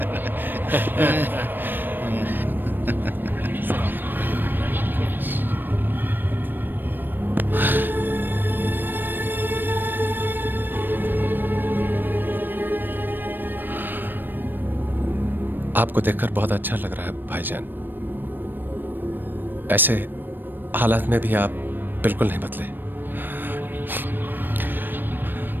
आपको देखकर बहुत अच्छा लग रहा है भाईजान। ऐसे हालात में भी आप बिल्कुल नहीं बदले।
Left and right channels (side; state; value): left; late; 0.093 ms